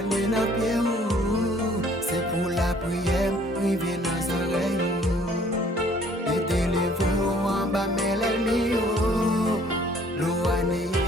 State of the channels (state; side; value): normal; both; correlation 0.58